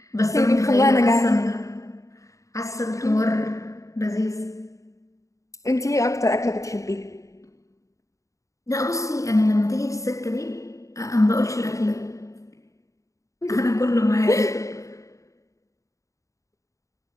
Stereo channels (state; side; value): late; right; 0.16 ms